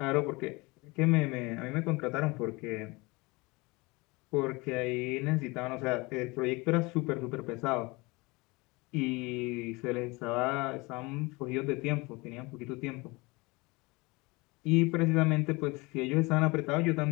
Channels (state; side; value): quieter; right; 24.8 dB